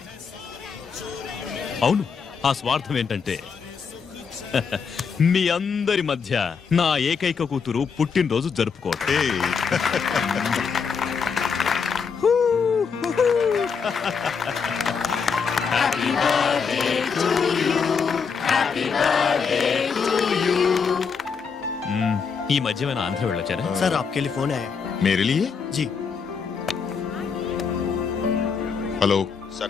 అవును, ఆ స్వార్థం ఏంటంటే మీ అందరి మధ్య నా ఏకైక కూతురు పుట్టినరోజు జరుపుకోవట్టే. ఈ మధ్య ఏమైనా ఆంధ్ర వెళ్ళొచ్చారా? సార్ आपके लिए फोन आया. मेरे लिए? जी. హలో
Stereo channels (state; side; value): quieter; right; 5.8 dB